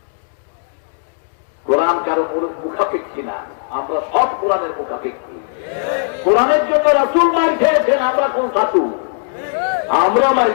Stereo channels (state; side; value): silent; right; digital silence